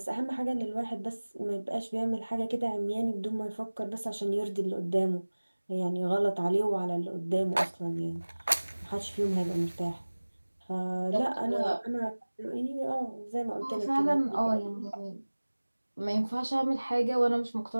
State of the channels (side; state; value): both; inverted; correlation -1.00